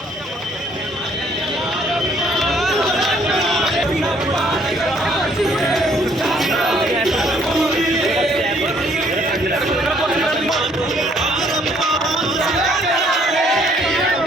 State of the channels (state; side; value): normal; both; correlation 0.63